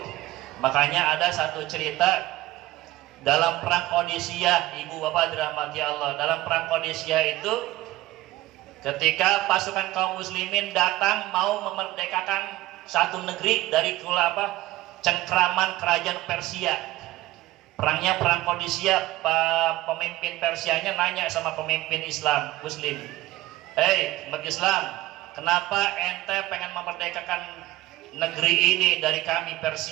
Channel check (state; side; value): quieter; left; 17.2 dB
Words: Makanya ada satu cerita dalam perang Qadisiyah, ibu bapak dirahmati Allah. Dalam perang Qadisiyah itu, ketika pasukan kaum muslimin datang mau memerdekakan satu negeri dari cengkraman kerajaan Persia. Perangnya perang Qadisiyah, pemimpin Persianya nanya sama pemimpin Islam Muslim, umat Islam, kenapa ente pengen memerdekakan negeri ini dari kami